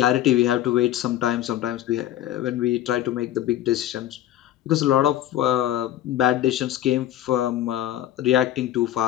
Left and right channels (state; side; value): quieter; right; 12.8 dB